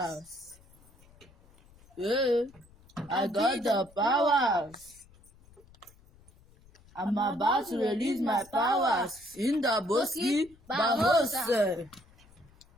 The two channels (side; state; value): left; noise; rumble, 27 dB below the sound